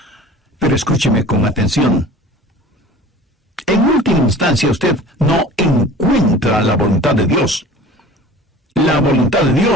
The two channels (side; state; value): both; normal; correlation 0.42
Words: Pero escúcheme con atención. En última instancia, usted no encuentra la voluntad de Dios. La voluntad de